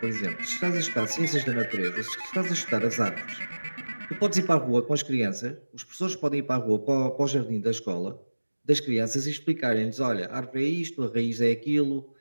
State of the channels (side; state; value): both; inverted; correlation -1.00